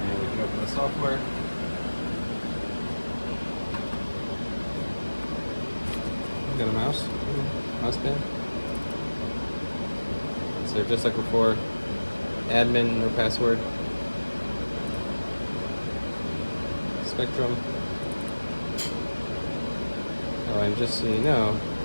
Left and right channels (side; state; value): both; inverted; correlation -1.00